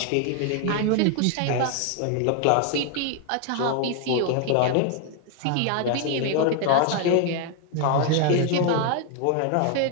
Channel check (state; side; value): different; both; correlation 0.00